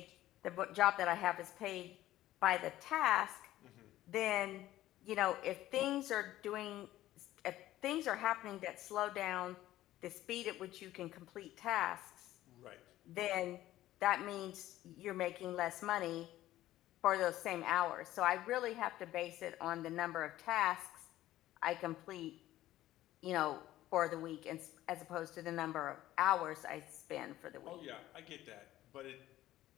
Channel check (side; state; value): right; quieter; 14.6 dB